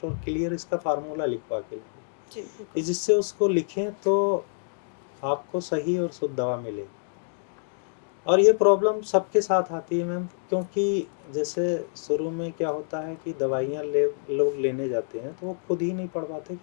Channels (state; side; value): silent; right; digital silence